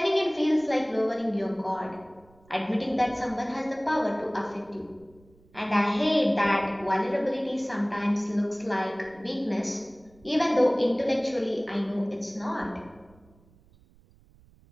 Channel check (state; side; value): noise; right; rumble, 28 dB below the sound